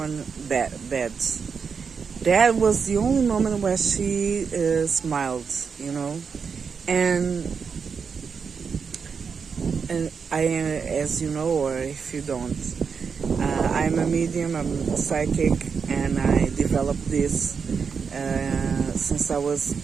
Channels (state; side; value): quieter; left; 5.9 dB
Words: bad. That was the only moment where she smiled, And I, as you know, or if you don't, I'm a medium, I'm a psychic, and I developed this since I was